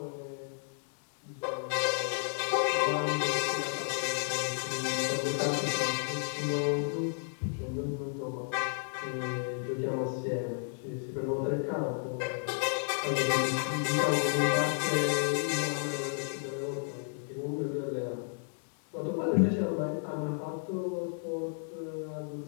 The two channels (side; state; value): right; silent; digital silence